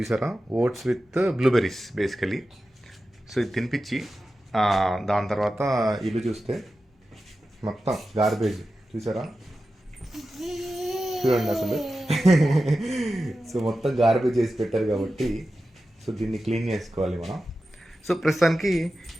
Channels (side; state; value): both; normal; correlation 0.93